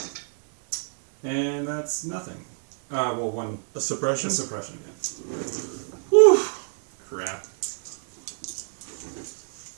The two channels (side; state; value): left; silent; digital silence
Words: and that's nothing. Well, 1 A suppression? suppression. Yeah. Whew. Crap.